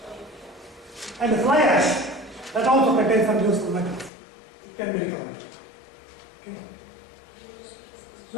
And the fly ash, that also contains some useful metals. It can be recovered. Okay.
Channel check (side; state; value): right; drops out; at 4.1 s